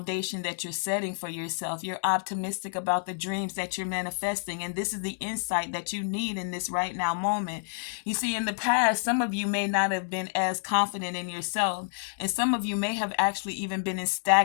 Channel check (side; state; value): right; silent; digital silence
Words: that you're setting for yourself. You're optimistic about the dreams that you're manifesting. And this is the insight that you need in this right now moment. You see, in the past, some of you may not have been as confident in yourself. And some of you may have actually even been in